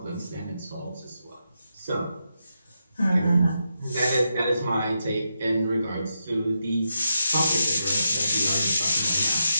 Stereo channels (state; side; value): inverted; both; correlation -0.84